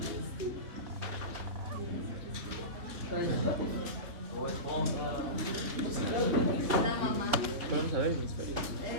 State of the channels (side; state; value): left; late; 3.1 ms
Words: Vamos a ver hemisferios.